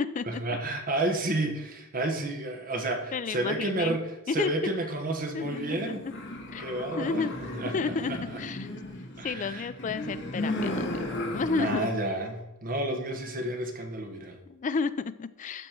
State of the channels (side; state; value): both; normal; correlation 0.37